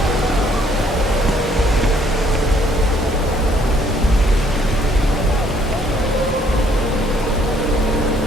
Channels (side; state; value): both; normal; correlation 0.64